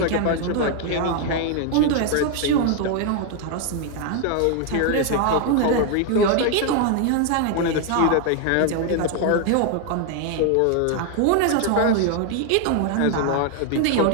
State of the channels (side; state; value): both; different; correlation 0.01